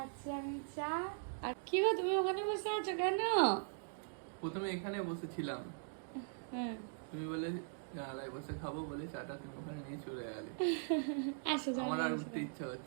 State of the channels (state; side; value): silent; left; digital silence